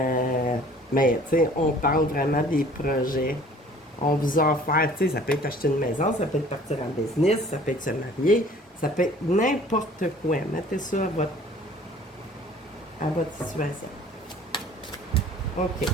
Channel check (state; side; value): normal; both; correlation 0.51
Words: tu sais, on parle vraiment des projets. On vous a offert, tu sais, ça peut être acheter une maison, ça peut être partir en business, ça peut être se marier, ça peut être n'importe quoi. Mettez ça à votre situation. OK.